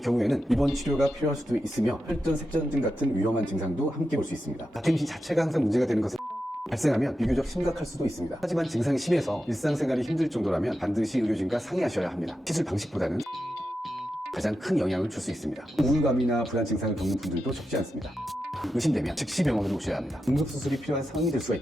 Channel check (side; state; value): both; normal; correlation 0.89